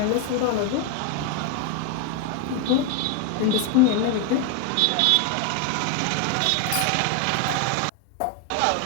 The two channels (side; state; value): both; different; correlation 0.01